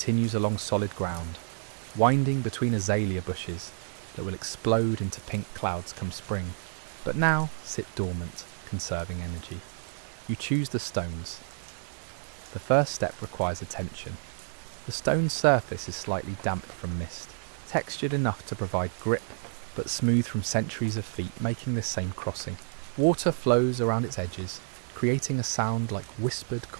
along solid ground, winding between azalea bushes that will explode into pink clouds come spring, but now sit dormant, conserving energy. You choose the stones. The first step requires attention. The stone's surface is slightly damp from mist, textured enough to provide grip, but smooth from centuries of feet making this same crossing. Water flows around its edges, creating a sound like whispered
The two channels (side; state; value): left; silent; digital silence